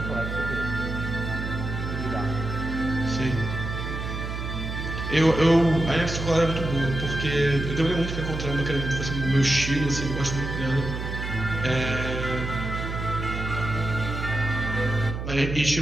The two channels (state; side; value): noise; right; hum, 5 dB below the sound